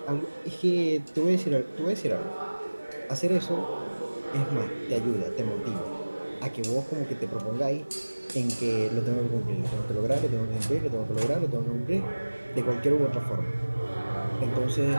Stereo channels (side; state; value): both; inverted; correlation -1.00